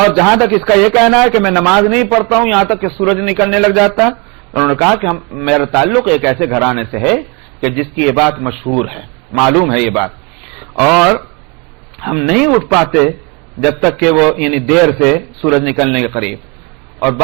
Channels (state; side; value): quieter; left; 29.7 dB